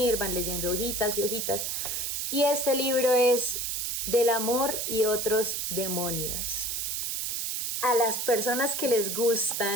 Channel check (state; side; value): noise; right; hiss, 1 dB below the sound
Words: van leyendo hojitas y hojitas. Y este libro es Del amor y otros demonios. A las personas que les